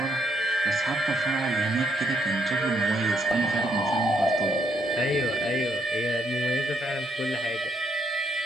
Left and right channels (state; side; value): normal; both; correlation 0.73